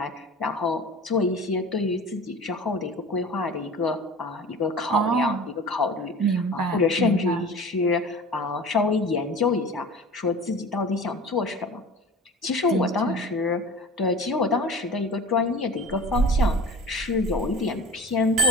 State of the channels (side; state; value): both; normal; correlation 0.38